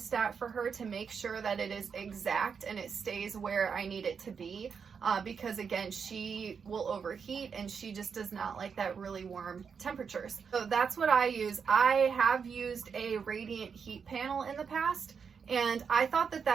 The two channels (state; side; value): quieter; left; 6.3 dB